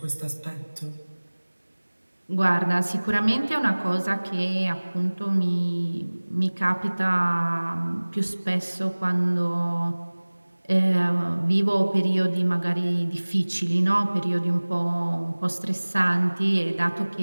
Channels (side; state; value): both; inverted; correlation -1.00